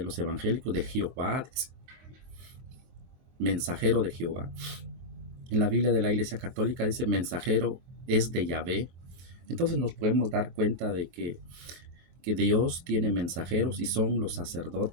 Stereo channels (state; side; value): late; left; 23 ms